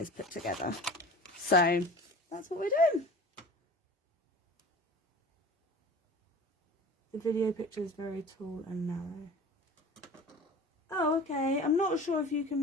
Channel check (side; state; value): both; normal; correlation 0.39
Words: put together. So that's what we're doing. The video picture is very tall and narrow. Oh, okay. I'm not sure if you can